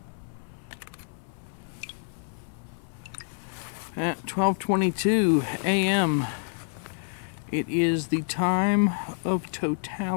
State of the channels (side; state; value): right; silent; 58 dB below the other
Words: At 12:22 a.m. it is the time of